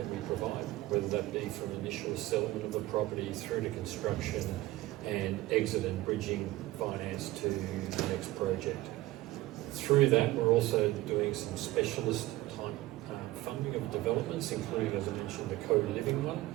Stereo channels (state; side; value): quieter; left; 17.4 dB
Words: we provide, whether that be from initial settlement of the property through to construction and exit and bridging finance to the next project. Through that, we're also doing some specialist type funding of developments, including, as I mentioned, the co-living one.